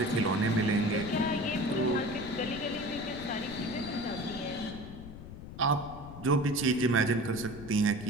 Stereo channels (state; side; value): noise; left; rumble, 13 dB below the sound